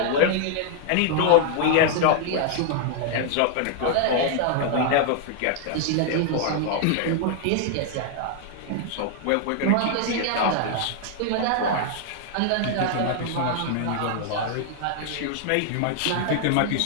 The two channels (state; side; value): different; both; correlation 0.00